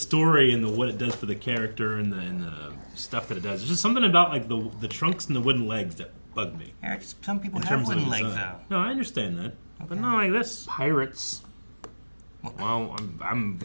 and what it does for the character and the stuff that it does. There's just something about like the trunks and the wooden legs that bug me. Eric, some people In have terms of wooden legs design. though. No, I understand that, but not like this. Pirates. Well, I'm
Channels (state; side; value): inverted; both; correlation -1.00